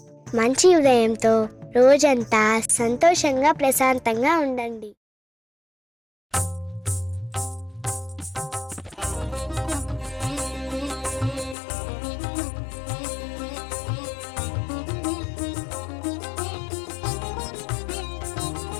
మంచి ఉదయంతో రోజంతా సంతోషంగా ప్రశాంతంగా ఉండండి.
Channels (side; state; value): right; drops out; at 11.6 s